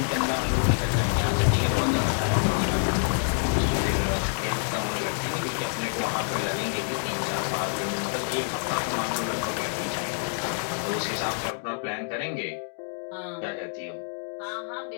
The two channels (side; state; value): right; silent; digital silence